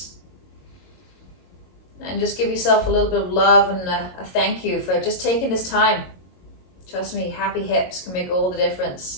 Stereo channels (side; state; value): right; late; 22 ms